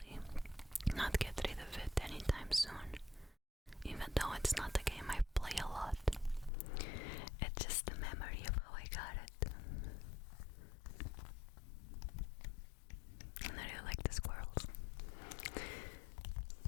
not get rid of it anytime soon, even though it's not a game I play a lot. It's just a memory of how I got it. And I really like the squirrels.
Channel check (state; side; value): drops out; right; at 6.5 s